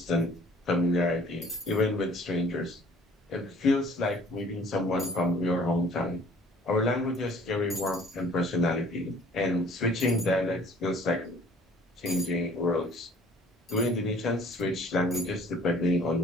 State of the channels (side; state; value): both; normal; correlation 0.54